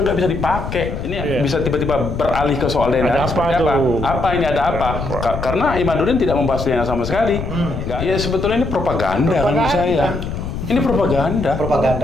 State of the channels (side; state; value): left; noise; rumble, 6 dB below the sound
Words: bisa dipakai. Ini bisa tiba-tiba beralih ke soal DNA. Ada apa tuh? Apa ini ada apa? Karena Imaduddin tidak membahas DNA sama sekali. Ya sebetulnya ini propaganda menurut saya. Ini propaganda.